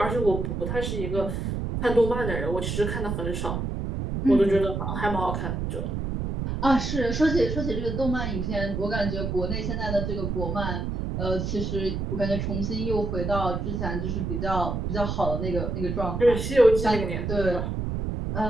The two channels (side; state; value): right; noise; rumble, 2 dB below the sound